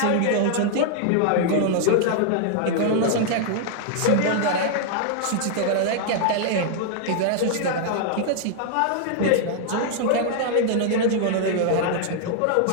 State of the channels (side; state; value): both; different; correlation 0.00